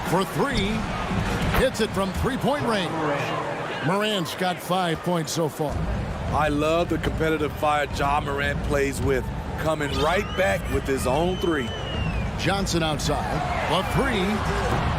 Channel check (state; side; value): identical; both; correlation 1.00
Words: For 3. Hits it from 3-point range. Morant's got 5 points so far. I love the competitive fire Ja Morant plays with, coming right back with his own 3. Johnson outside. A 3.